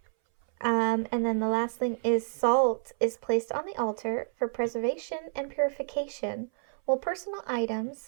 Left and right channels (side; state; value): left; silent; 58 dB below the other